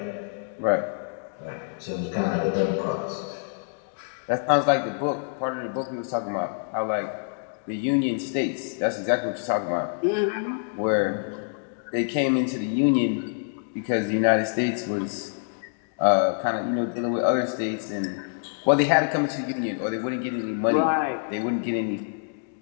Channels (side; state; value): right; silent; digital silence